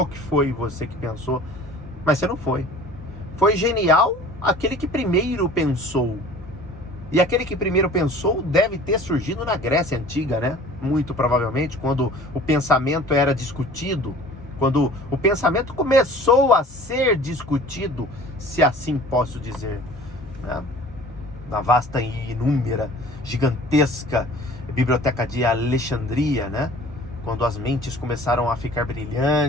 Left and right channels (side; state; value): both; normal; correlation 0.46